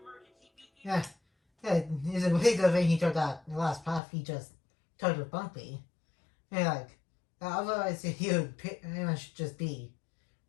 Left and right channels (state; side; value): drops out; right; at 4.0 s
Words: beacon. Yeah, it's a really good thing he took that the last path he just took with Bumpy. And otherwise he would pretty much just be